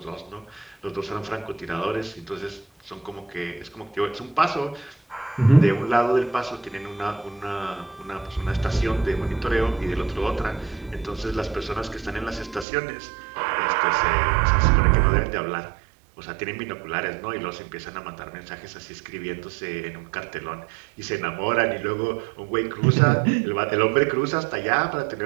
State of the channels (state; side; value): drops out; left; at 12.7 s